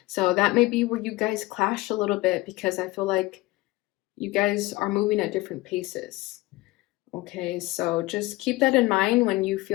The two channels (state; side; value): quieter; right; 20.0 dB